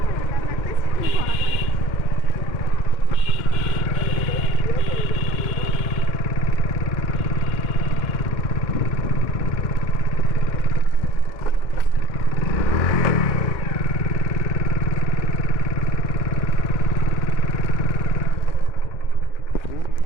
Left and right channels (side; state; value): right; late; 2.1 ms